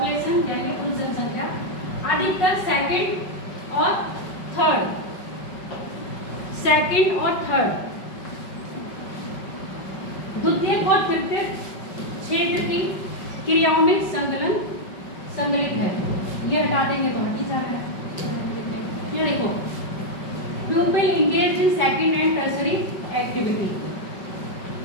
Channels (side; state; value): right; late; 5.3 ms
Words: यानी पुरुष जनसंख्या अधिकतर सेकंड और थर्ड, सेकंड और थर्ड, द्वितीय और तृतीय क्षेत्र की क्रियाओं में संकलित है। ये हटा देंगे तो हट ही जा रहा है। ये देखो, pupil engaged in second and tertiary activity,